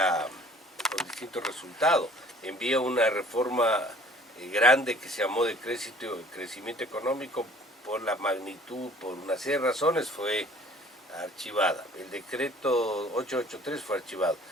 con distintos resultados. Envía una reforma grande que se llamó de crecimiento económico, por la magnitud, por una serie de razones, fue archivada. El decreto 883 fue archivado.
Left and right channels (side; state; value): both; normal; correlation 0.52